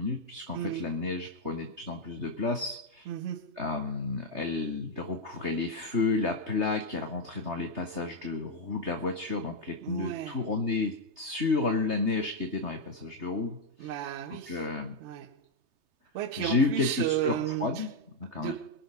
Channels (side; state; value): left; late; 3.3 ms